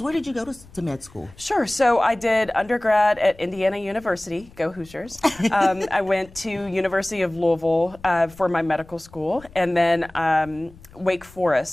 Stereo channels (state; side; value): noise; left; rumble, 23 dB below the sound